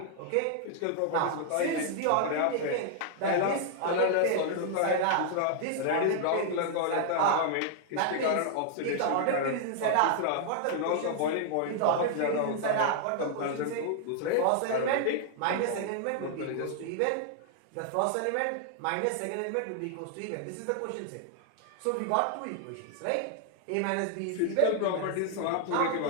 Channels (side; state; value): both; different; correlation 0.00